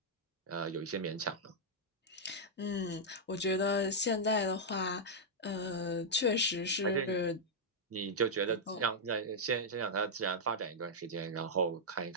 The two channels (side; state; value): both; normal; correlation -0.06